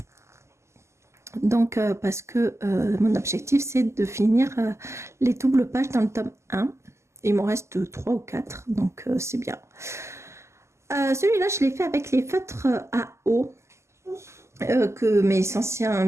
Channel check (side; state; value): left; late; 0.13 ms